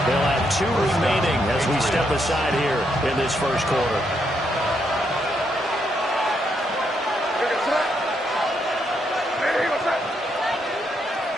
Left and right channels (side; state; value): both; normal; correlation 0.78